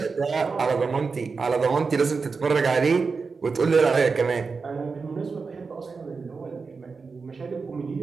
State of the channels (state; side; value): quieter; left; 4.7 dB